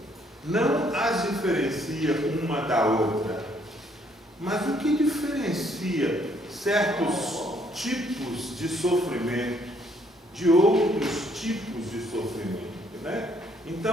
Não as diferencia uma da outra, mas o que diferencia certos tipos de sofrimento de outros tipos de sofrimento, né?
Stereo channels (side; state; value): both; normal; correlation 0.67